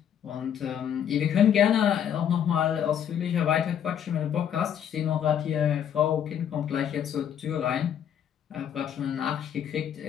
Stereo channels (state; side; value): quieter; right; 9.2 dB